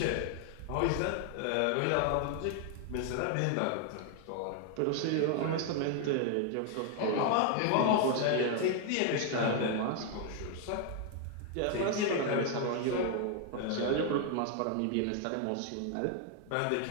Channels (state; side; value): different; both; correlation 0.00